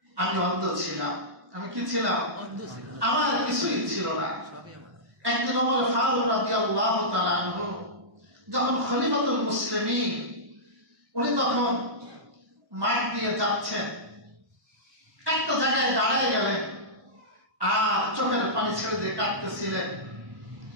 আমি অন্ধ ছিলাম। আমি কি ছিলাম? আমার কিছুই ছিল না। একদিন ওমর ফারুক রাদিয়াল্লাহু তাআলা আনহু যখন খলিফাতুল মুসলিমিন, উনি তখন মাঠ দিয়ে যাচ্ছেন, একটা জায়গায় দাঁড়ায় গেলেন আর চোখের পানি ছেড়ে দিয়ে কাঁদতেছিলেন।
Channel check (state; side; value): late; left; 1.1 ms